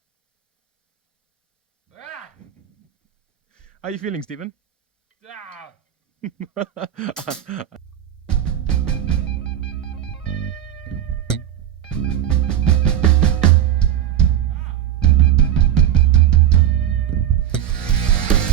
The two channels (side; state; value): left; quieter; 10.7 dB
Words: How are you feeling, Stephen?